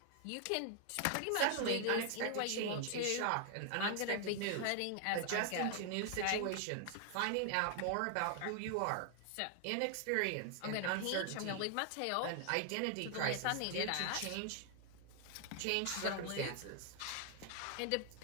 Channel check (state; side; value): different; both; correlation 0.00